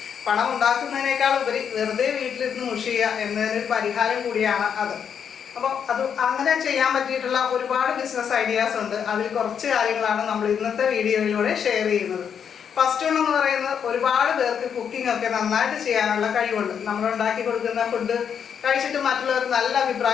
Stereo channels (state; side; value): quieter; right; 7.7 dB